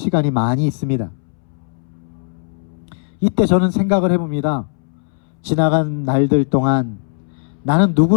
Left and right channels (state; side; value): silent; right; 66 dB below the other